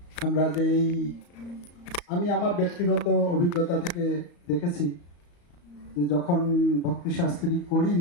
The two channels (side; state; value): right; late; 34 ms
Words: আমরা যে আমি আমার ব্যক্তিগত অভিজ্ঞতা থেকে দেখেছি যে যখন ভক্তি শাস্ত্রী